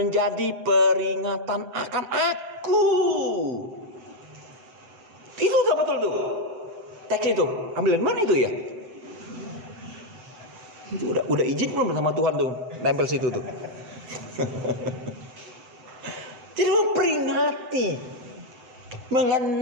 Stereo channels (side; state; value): left; late; 7.9 ms